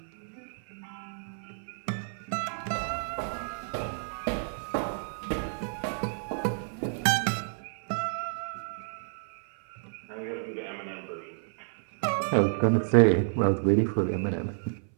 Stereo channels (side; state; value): left; silent; 58 dB below the other